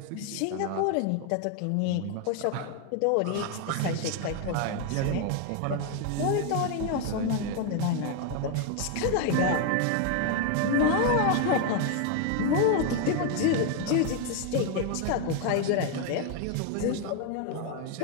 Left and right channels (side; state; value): both; different; correlation 0.01